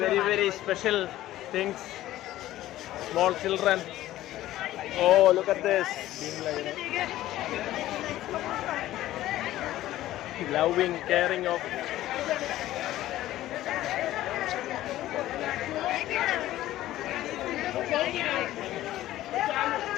very special things. Small children. Oh, look at this. Loving, caring of.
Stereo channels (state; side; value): quieter; right; 14.7 dB